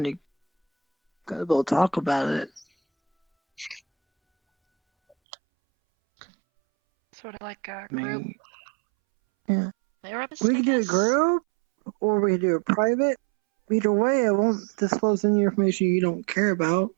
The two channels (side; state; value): left; drops out; at 5.2 s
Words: you gotta go talk about it. Sort of like a I group mean, yeah. therapist, We I can do a guess? group, or we can do a private. Either way, I won't disclose any information you don't care about,